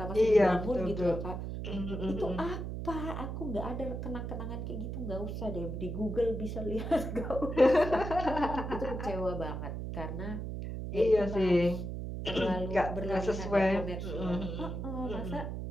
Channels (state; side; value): noise; right; hum, 5 dB below the sound